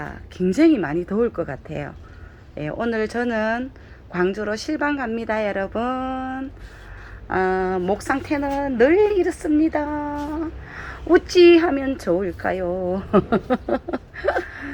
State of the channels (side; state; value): both; identical; correlation 1.00